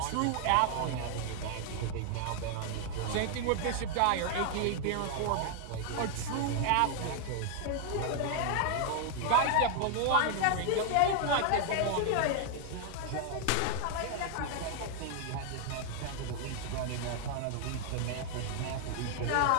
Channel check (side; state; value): both; different; correlation 0.00